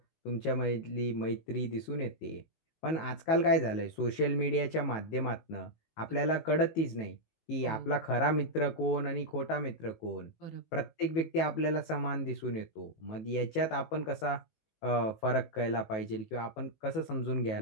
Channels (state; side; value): late; right; 18 ms